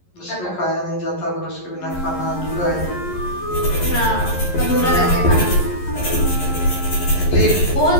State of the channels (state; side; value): late; right; 11 ms